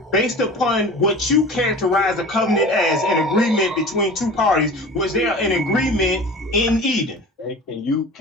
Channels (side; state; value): both; normal; correlation 0.37